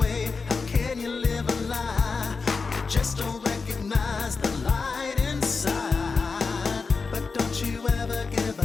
How can you live a lie? You just don't recognize the light inside. But don't you ever give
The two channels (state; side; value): quieter; right; 4.6 dB